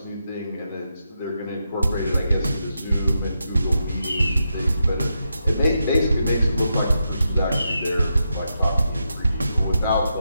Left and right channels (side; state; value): both; inverted; correlation -0.85